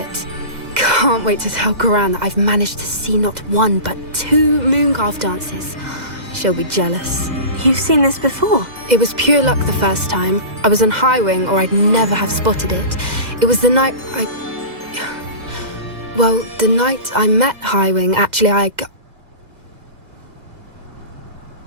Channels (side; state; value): left; late; 2.0 ms